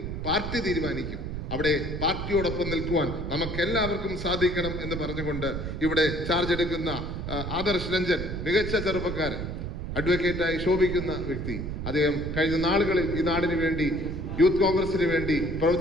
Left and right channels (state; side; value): noise; right; rumble, 5 dB below the sound